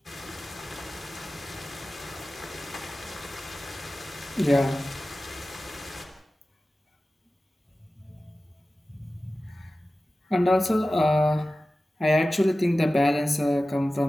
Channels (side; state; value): both; normal; correlation 0.96